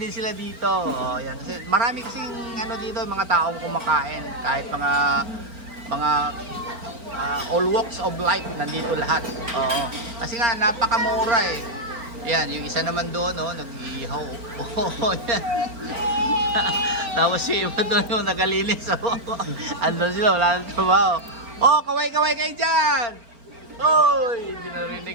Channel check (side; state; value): left; late; 4.4 ms